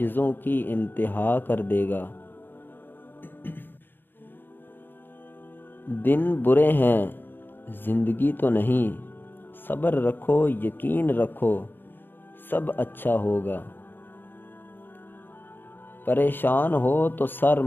کی انتہا کر دے گا۔ دن برے ہیں، زندگی تو نہیں، صبر رکھو، یقین رکھو، سب اچھا ہوگا۔ پریشان ہو تو سر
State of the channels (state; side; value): late; right; 0.097 ms